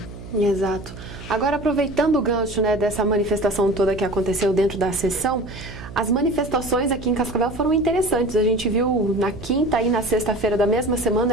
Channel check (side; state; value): right; noise; hum, 14 dB below the sound